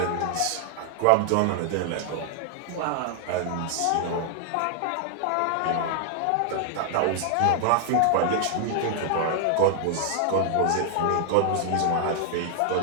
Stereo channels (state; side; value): different; both; correlation -0.01